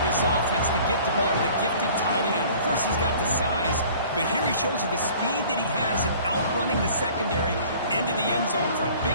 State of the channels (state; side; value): inverted; both; correlation -0.49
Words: this offense to get the ball to the gifted tight end. Of course, he's got the size, but here he shows you the speed that he has in outrunning the secondary into the end zone for a